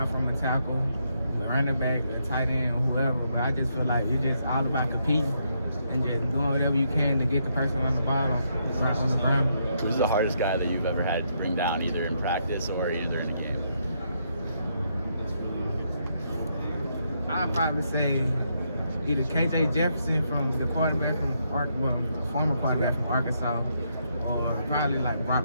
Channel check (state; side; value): inverted; both; correlation -0.77